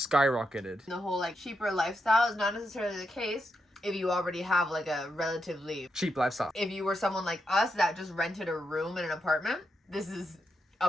The whole like cheaper lifestyle is not necessarily the case if you already have like a relatively Cheap lifestyle. If you were someone like us that just rented a room in an apartment, this is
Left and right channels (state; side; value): normal; both; correlation 0.84